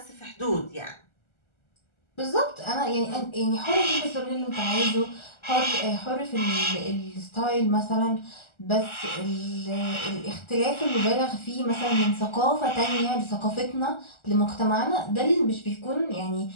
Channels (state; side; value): late; right; 1.4 ms